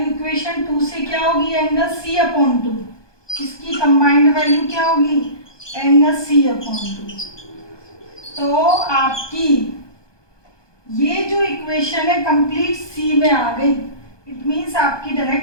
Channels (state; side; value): late; right; 1.2 ms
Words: इक्वेशन 2 से क्या होगी, एंगल सी अपॉन 2, इसकी कंबाइंड वैल्यू क्या होगी, एंगल सी अपॉन 2। तो आपकी ये जो इक्वेशन है कंप्लीट सी में आ गई, इट मीन्स आपकी